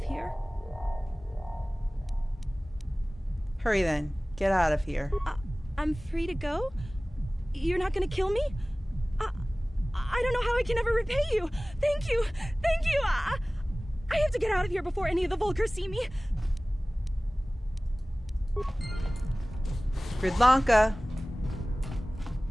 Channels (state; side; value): normal; both; correlation 0.98